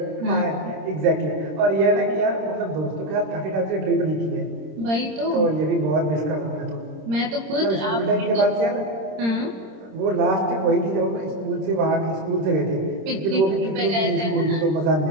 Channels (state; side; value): late; left; 26 ms